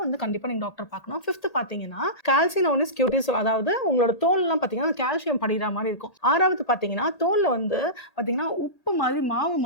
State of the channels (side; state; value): right; late; 1.8 ms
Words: வந்து கண்டிப்பா நீங்க டாக்டர் பார்க்கணும். 5த் பார்த்தீங்கன்னா, கால்சினோனிஸ் கியூட்டிஸ் அதாவது உங்களோட தோல்லாம் பார்த்தீங்கன்னா, கால்சியம் படியிற மாரி இருக்கும். 6வது பார்த்தீங்கன்னா, தோல்ல வந்து பார்த்தீங்கன்னா, உப்பு மாரி மாவு